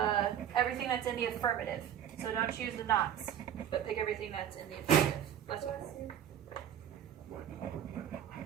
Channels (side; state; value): left; quieter; 9.7 dB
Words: everything that's in the affirmative. So don't choose the nots, but pick everything that's in the affirmative. Let's go.